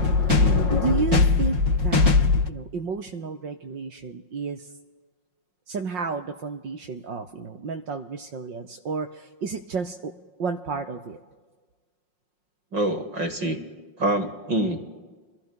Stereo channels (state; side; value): late; left; 5.5 ms